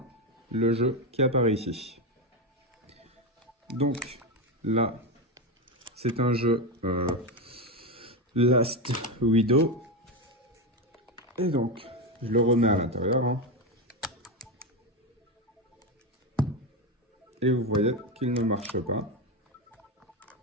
le jeu qui apparaît ici. Donc là, c'est un jeu Last Widow. Et donc, je le remets à l'intérieur. Hein. Et vous voyez qu'il ne marche pas.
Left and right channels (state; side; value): normal; both; correlation 0.12